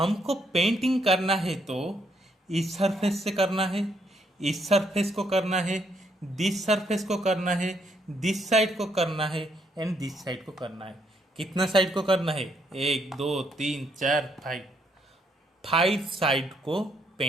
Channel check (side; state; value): both; normal; correlation 0.73